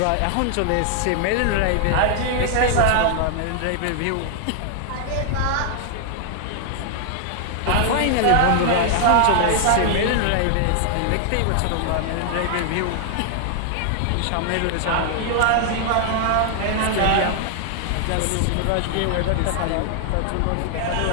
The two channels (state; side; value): different; both; correlation 0.00